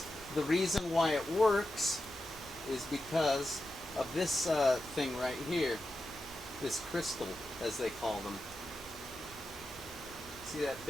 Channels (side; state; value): both; normal; correlation 0.90